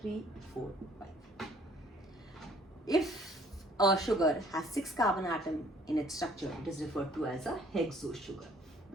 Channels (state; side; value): normal; both; correlation 0.58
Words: 3, 4, 5. If a sugar has 6 carbon atom in its structure, it is referred to as a hexose sugar.